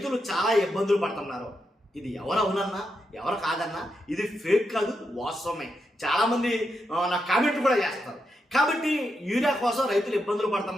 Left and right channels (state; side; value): normal; both; correlation 0.84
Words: చాలా ఇబ్బందులు పడుతున్నారు. ఇది ఎవరు అవునన్నా ఎవరు కాదన్నా ఇది ఫేక్ కాదు, వాస్తవమే. చాలామంది నా కామెంట్ కూడా చేస్తారు. కాబట్టి యూరియా కోసం రైతులు ఇబ్బందులు